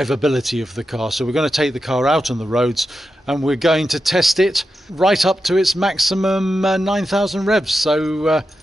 of the car. So we're going to take the car out on the roads and we're going to test it right up to its maximum 9,000 revs. So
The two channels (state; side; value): normal; both; correlation 0.89